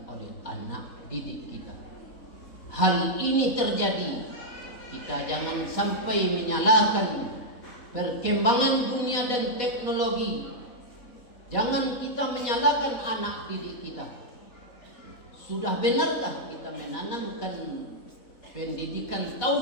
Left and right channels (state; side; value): late; right; 3.6 ms